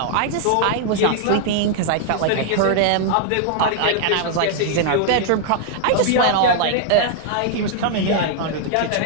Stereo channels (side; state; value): both; different; correlation -0.01